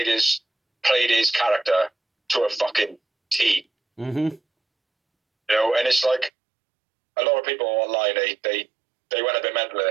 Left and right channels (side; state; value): left; drops out; at 6.3 s